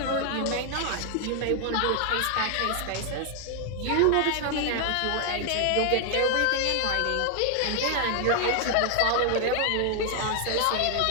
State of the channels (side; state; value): both; different; correlation 0.00